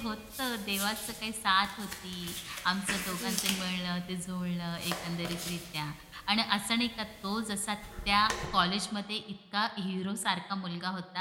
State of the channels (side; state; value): both; identical; correlation 1.00